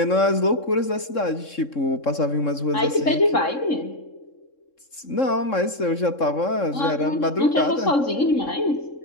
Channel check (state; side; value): late; right; 3.7 ms